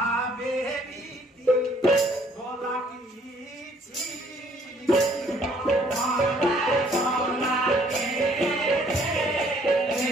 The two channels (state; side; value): normal; both; correlation 0.62